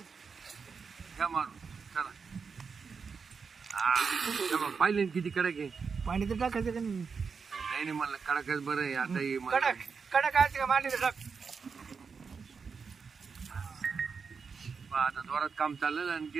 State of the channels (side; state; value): left; quieter; 5.5 dB